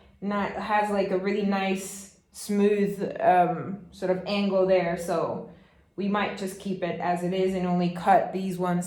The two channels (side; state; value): both; identical; correlation 1.00